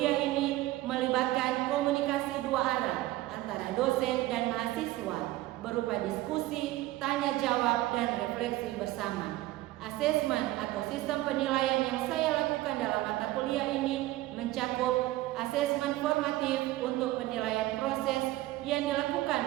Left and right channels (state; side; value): quieter; left; 17.0 dB